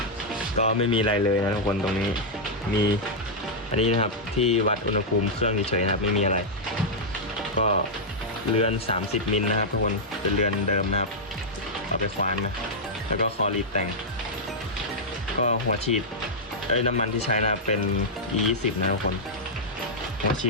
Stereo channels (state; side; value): normal; both; correlation -0.06